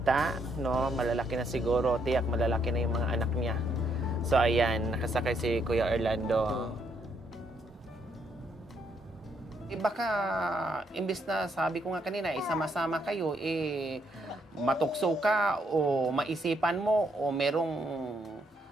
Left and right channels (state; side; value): normal; both; correlation 0.73